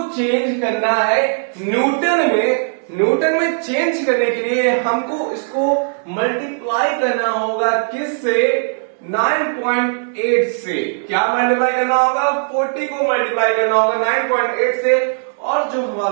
चेंज करना है न्यूटन में। न्यूटन में चेंज करने के लिए हमको इसको मल्टीप्लाई करना होगा किससे? 9.8 से। क्या मल्टीप्लाई करना होगा? 40 को मल्टीप्लाई करना होगा 9.8 से, और जो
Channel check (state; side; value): silent; left; digital silence